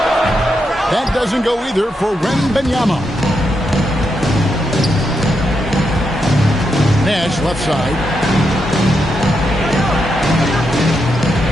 That doesn't go either for Benyama. Nash left side.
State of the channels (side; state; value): both; normal; correlation 0.83